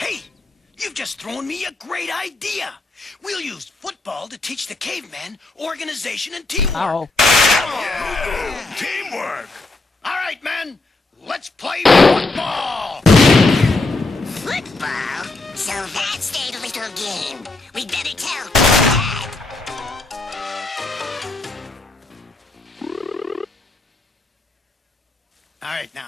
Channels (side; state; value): right; quieter; 3.2 dB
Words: you've just thrown me a great idea. We'll use football to teach the cavemen organization and teamwork. Yeah. Teamwork! All right, men, let's play football! Football? So that's their little game. We'd better tell Dad. All right,